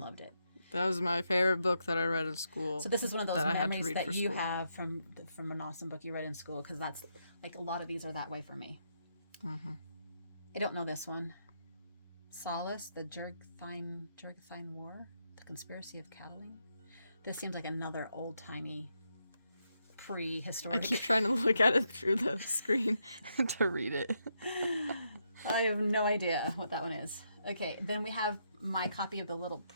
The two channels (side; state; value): both; inverted; correlation -0.80